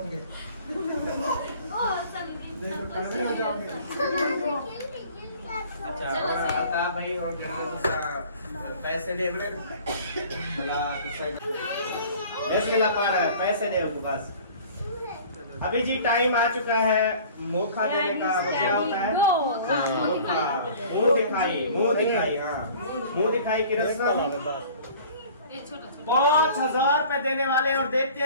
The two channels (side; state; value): both; inverted; correlation -0.47